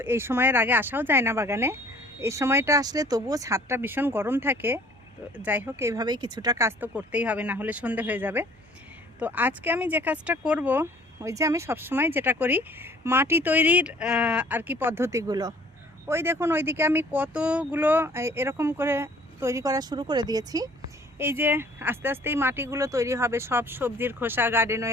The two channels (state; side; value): normal; both; correlation 0.54